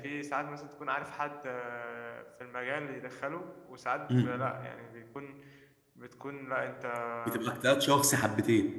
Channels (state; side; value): identical; both; correlation 1.00